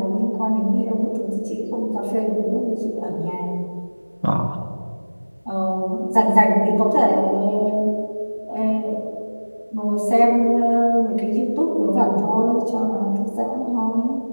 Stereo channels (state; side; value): inverted; both; correlation -1.00